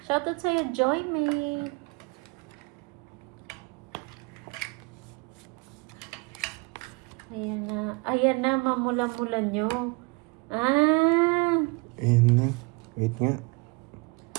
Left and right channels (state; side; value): quieter; left; 28.6 dB